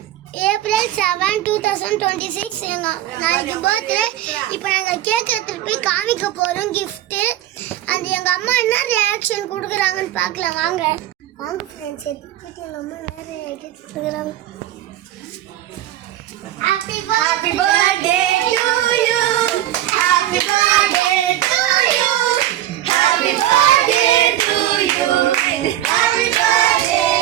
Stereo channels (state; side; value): quieter; left; 13.0 dB